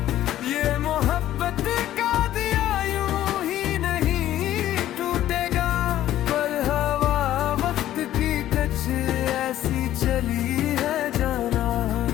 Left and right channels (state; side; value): quieter; right; 13.0 dB